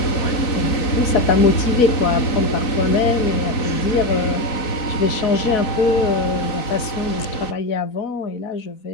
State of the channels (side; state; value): right; late; 4.1 ms